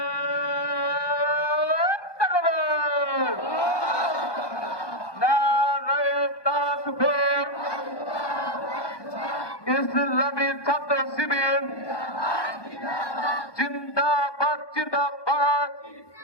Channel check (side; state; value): right; late; 1.2 ms